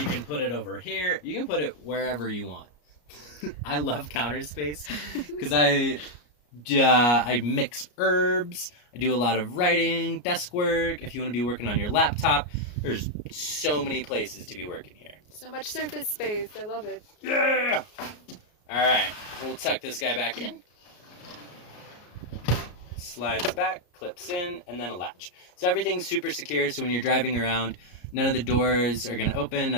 can put it over here. You can put it wherever you want. I love counter space because I mix herbs. I do a lot of writing, desk work. If you want to be working on your laptop, there's so many places to be working here. So much surface space. I love it. Yeah! All right, we'll tuck this guy back in. Slides back, clips in, and then a latch. So everything's super secure, so when you're driving around, none of the doors are going to open,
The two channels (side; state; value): right; late; 33 ms